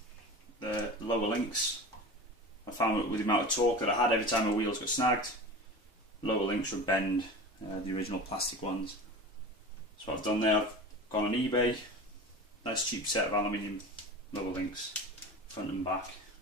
the lower links, I found that with the amount of torque that I had every time my wheels got snagged, lower links would bend the original plastic ones. So what I've done there, I've gone on eBay, nice cheap set of aluminium lower links, front and back.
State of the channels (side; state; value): both; normal; correlation 0.33